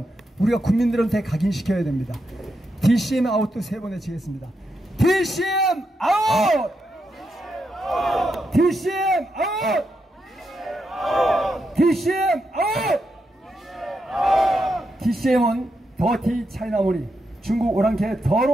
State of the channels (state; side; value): normal; both; correlation 0.84